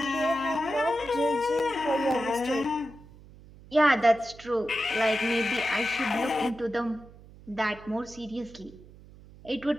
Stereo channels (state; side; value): noise; right; hum, 21 dB below the sound